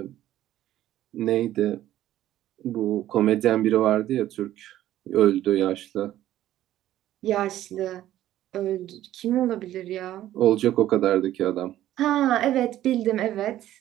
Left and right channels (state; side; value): quieter; left; 13.2 dB